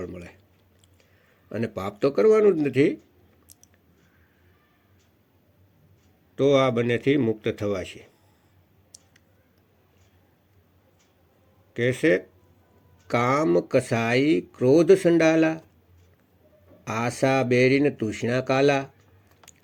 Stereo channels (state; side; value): identical; both; correlation 1.00